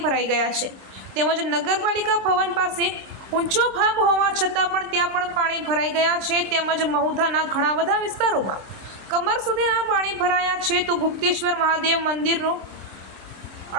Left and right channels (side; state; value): left; late; 26 ms